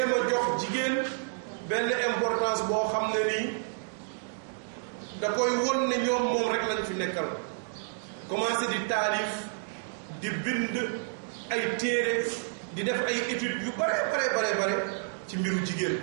a jox jigéen benn importance boo xam ne nii da koy won ne ñoom moom rek lañ fi nekkal commencé di taalif di bind ay téere di def ay études yu bare ci mbiru jigéen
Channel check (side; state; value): left; silent; digital silence